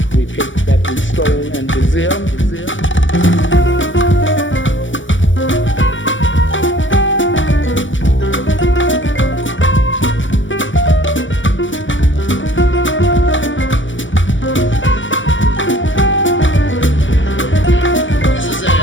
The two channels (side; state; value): right; late; 0.56 ms